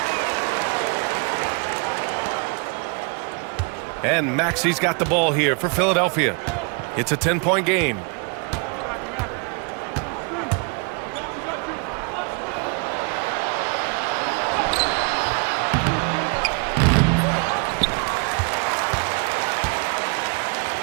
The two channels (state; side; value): quieter; left; 35.1 dB